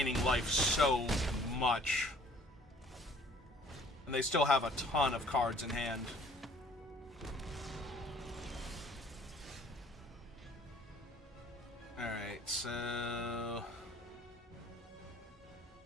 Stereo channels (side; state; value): both; normal; correlation 0.55